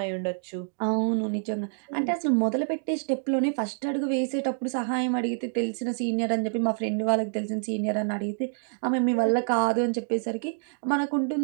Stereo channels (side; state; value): left; silent; digital silence